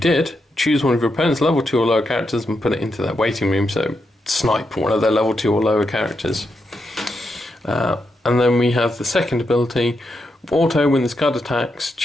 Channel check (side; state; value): both; normal; correlation 0.84